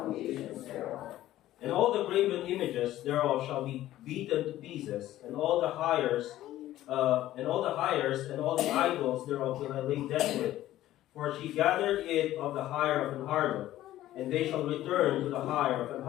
thereof. And all the graven images thereof shall be beaten to pieces, and all the hires and all the idols thereof will I lay desolate. For she gathered it of the hire of an harlot, and they shall return to the hire of an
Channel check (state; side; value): quieter; right; 14.2 dB